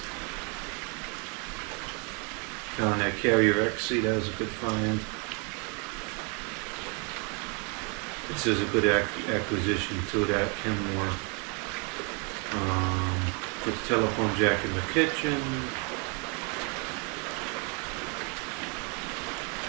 Found that Carrier XC. That was a good find. This is a good acquisition too. That Kenmore. Put the telephone jack in the kitchen.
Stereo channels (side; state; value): left; quieter; 34.3 dB